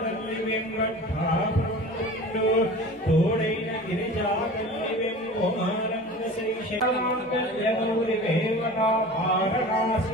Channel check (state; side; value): normal; both; correlation 0.38